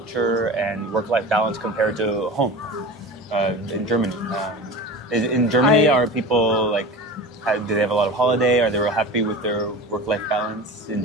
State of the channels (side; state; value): both; normal; correlation 0.32